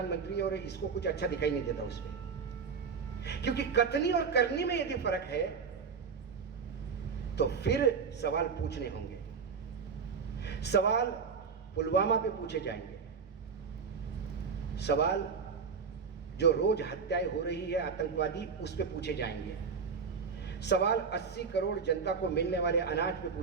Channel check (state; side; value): quieter; left; 5.7 dB